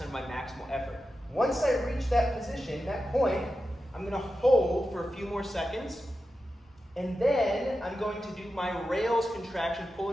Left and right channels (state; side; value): normal; both; correlation 0.91